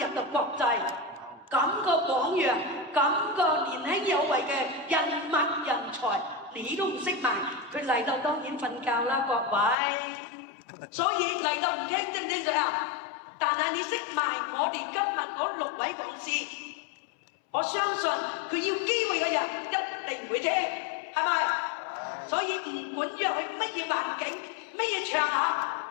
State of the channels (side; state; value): right; drops out; at 9.8 s